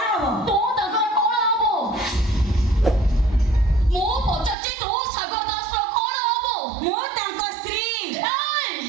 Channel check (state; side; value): drops out; left; at 4.5 s